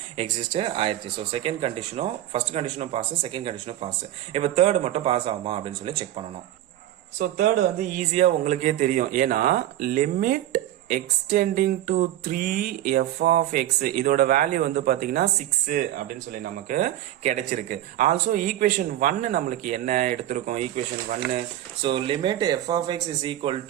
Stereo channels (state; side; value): quieter; left; 13.1 dB